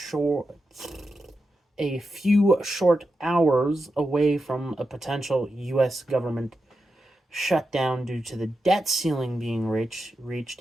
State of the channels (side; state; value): both; normal; correlation 0.89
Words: a few short hours away from a potential U.S. government shutdown due to the debt ceiling being reached,